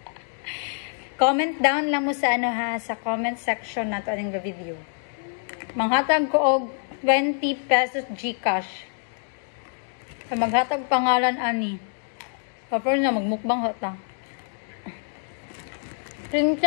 Comment down lang mo sa sa comment section nato aning video. Manghatag ko og 20 pesos GCash. Sa maghatag pangalan ani. Kapag na magmukbang hata.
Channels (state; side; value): silent; right; 61 dB below the other